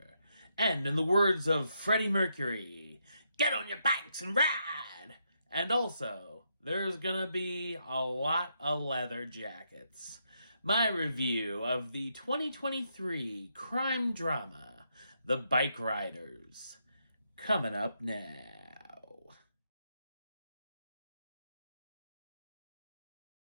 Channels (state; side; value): inverted; both; correlation -0.79